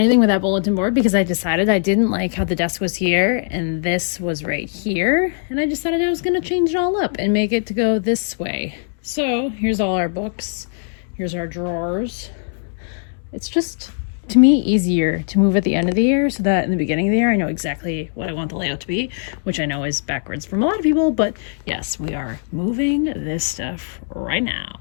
with that bulletin board because I decided I didn't like how the desk was here and this was right here. And I decided I was going to change it all up and make it to go this way. So here's all our books. Here's our drawers. It's just, to me, easier to move at the end of the year so that in the beginning of the year, I know exactly what I want the layout to be, which I know is backwards from a lot of people, but yes, we are moving this stuff right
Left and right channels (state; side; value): silent; right; digital silence